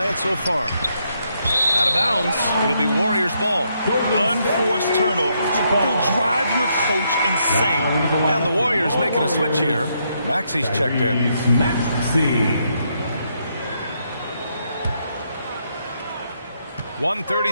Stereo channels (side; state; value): both; inverted; correlation -0.77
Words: so far. Out of bounds. It'll be Warriors ball. Unforced turnovers. They'll drive your coach insane. And the Warriors making a switch here. Maxi's checked in. Maxey.